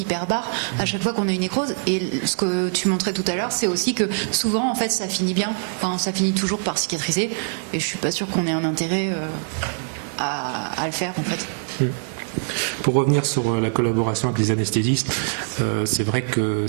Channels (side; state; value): left; silent; digital silence